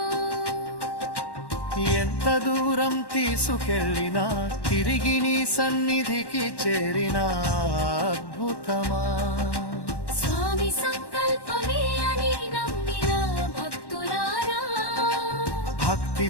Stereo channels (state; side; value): late; right; 1.1 ms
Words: ఎంత దూరం తీసుకెళ్ళినా తిరిగి నీ సన్నిధికి చేరిన అద్భుతమా. స్వామి సంకల్పమే అని నమ్మిన భక్తులారా